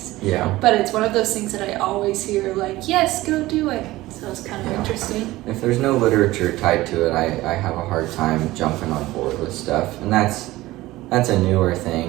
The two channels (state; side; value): quieter; left; 17.9 dB